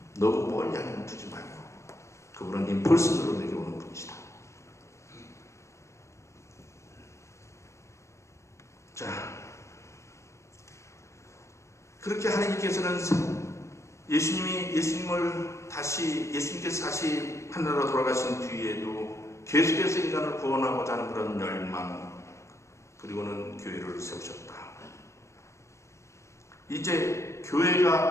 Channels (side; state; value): right; late; 0.14 ms